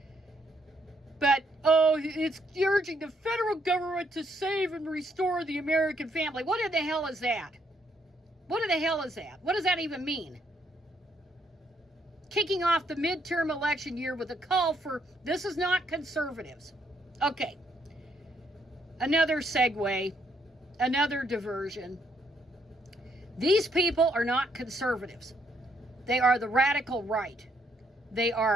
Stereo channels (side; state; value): both; normal; correlation 0.72